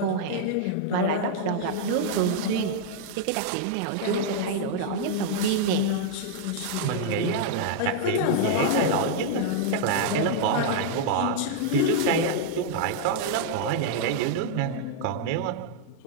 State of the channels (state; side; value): different; both; correlation -0.01